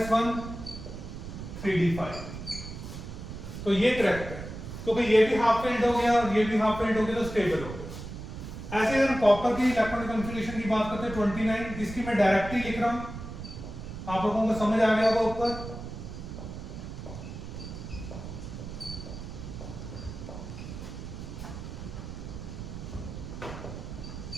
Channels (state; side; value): noise; right; rumble, 9 dB below the sound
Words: 3d5। तो ये करेक्ट है क्योंकि ये भी हाफ फिल्ड हो गया और ये भी हाफ फिल्ड हो गया तो स्टेबल हो गया। ऐसे अगर कॉपर की इलेक्ट्रॉनिक कॉन्फ़िगरेशन की बात करते हैं 29, इसकी मैं डायरेक्ट ही लिख रहा हूं, आप लोगों को समझ आ गया होगा ऊपर।